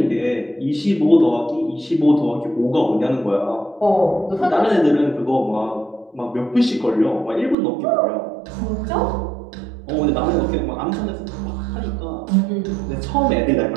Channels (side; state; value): left; drops out; at 7.6 s